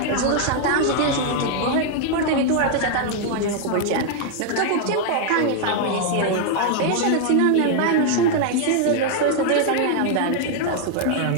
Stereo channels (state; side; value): different; both; correlation 0.00